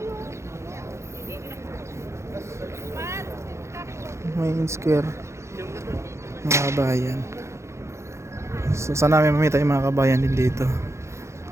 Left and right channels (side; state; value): left; late; 0.14 ms